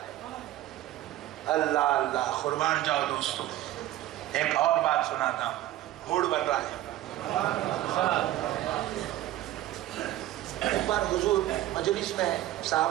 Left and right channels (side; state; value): left; quieter; 14.6 dB